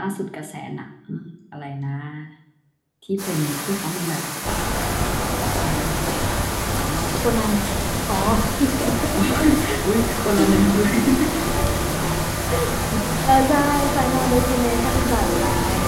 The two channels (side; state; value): both; identical; correlation 1.00